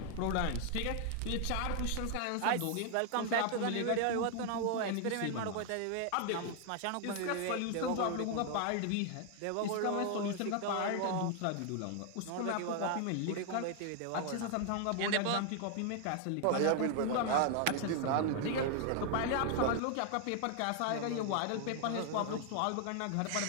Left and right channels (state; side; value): different; both; correlation 0.00